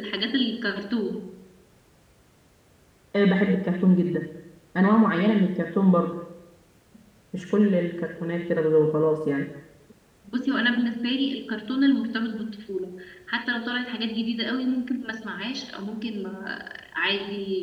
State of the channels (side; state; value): both; identical; correlation 1.00